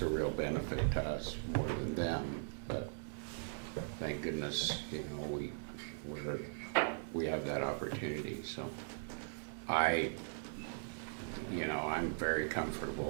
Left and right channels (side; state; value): left; silent; digital silence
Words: a real benefit to us more than them, but thank goodness, you know, we have that opportunity, so I'm very